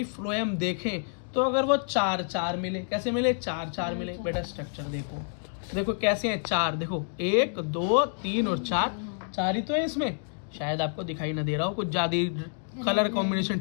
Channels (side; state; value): right; silent; digital silence